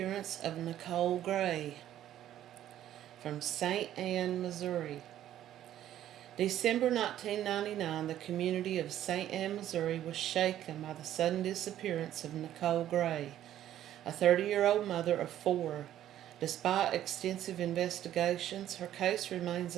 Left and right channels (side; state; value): left; quieter; 12.0 dB